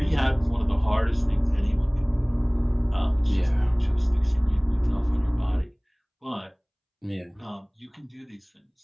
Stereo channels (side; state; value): both; identical; correlation 1.00